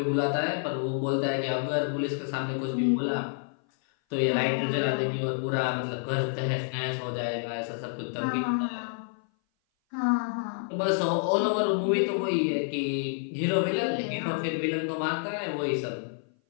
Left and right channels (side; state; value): right; silent; 57 dB below the other